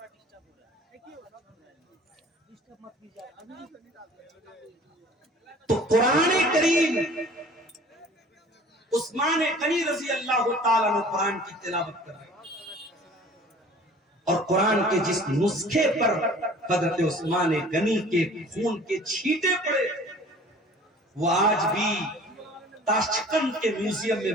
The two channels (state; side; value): normal; both; correlation 0.48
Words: تو قرآن کریم، عثمان غنی رضی اللہ تعالیٰ عنہ قرآن کی تلاوت کر رہے ہیں، اور قرآن کے جس نسخے پر حضرت عثمان غنی کے خون کے چھینٹے پڑے وہ آج بھی تاشقند کے میوزیم میں